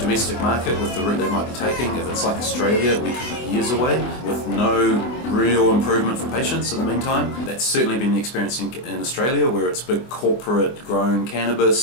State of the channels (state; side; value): late; right; 24 ms